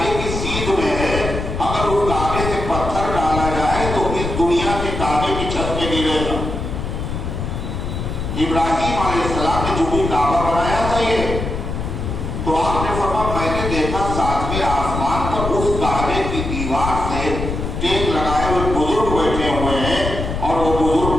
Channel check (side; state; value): left; noise; rumble, 4 dB below the sound